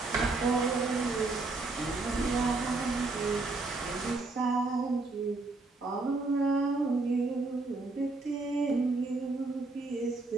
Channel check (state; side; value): quieter; left; 3.4 dB